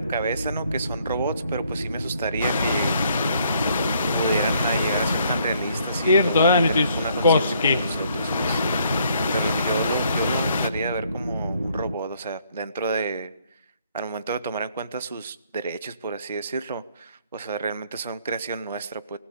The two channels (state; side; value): inverted; both; correlation -0.67